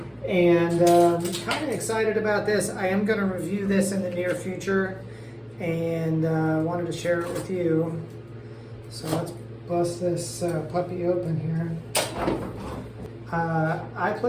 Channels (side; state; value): both; identical; correlation 1.00